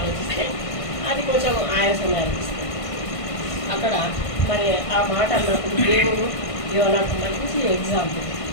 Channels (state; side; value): late; right; 1.5 ms